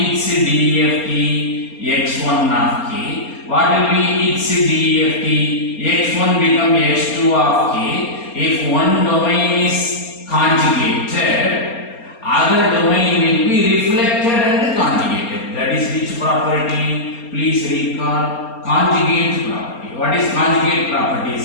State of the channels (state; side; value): late; right; 4.3 ms